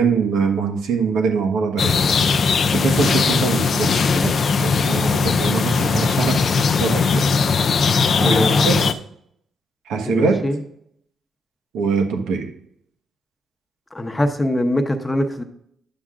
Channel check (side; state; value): both; normal; correlation 0.78